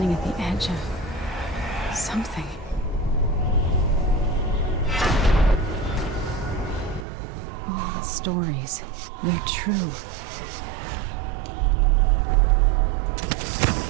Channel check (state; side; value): drops out; left; at 7.1 s